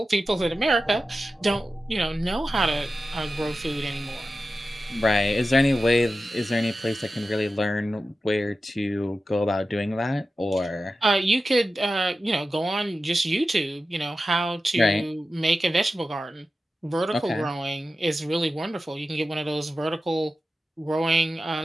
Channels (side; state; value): both; normal; correlation 0.93